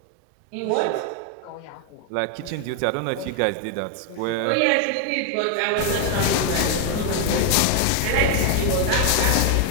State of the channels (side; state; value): both; different; correlation 0.01